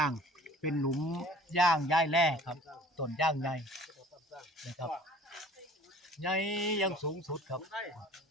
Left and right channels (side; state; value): both; normal; correlation 0.48